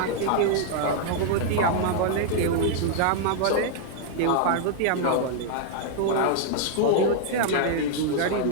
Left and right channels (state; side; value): different; both; correlation -0.01